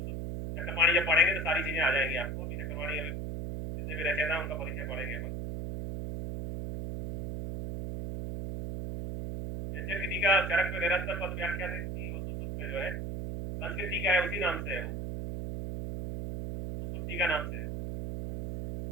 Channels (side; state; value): right; noise; hum, 3 dB below the sound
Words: चक्रपाणी जब पढ़ेंगे तो सारी चीजें आ जाएंगी आपको। अभी चक्रपाणी अभी जितने भी रचयिता है उनका परिचय पढ़ेंगे अपन। यज्ञ का चरक में निरंतर पद व्याख्या से सुश्रुत पे जो है संस्कृत टीका है, उसी नाम से है वो, सुश्रुत टीका नाम से है।